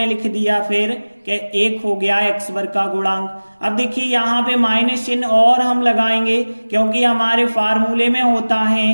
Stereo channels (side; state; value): both; inverted; correlation -1.00